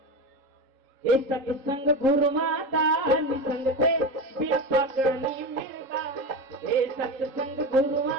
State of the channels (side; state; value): left; late; 3.7 ms